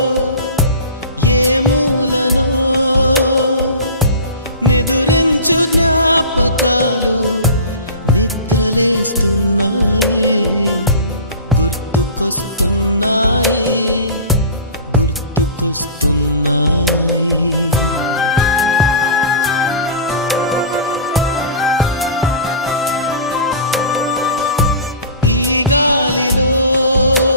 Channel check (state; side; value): inverted; both; correlation -0.35